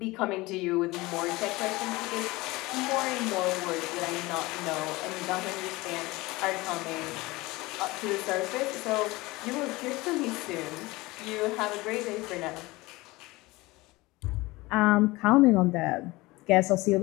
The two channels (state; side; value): quieter; right; 21.2 dB